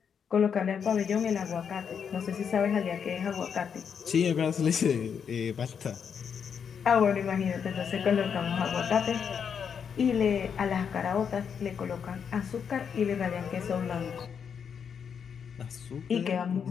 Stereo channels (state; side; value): quieter; right; 7.1 dB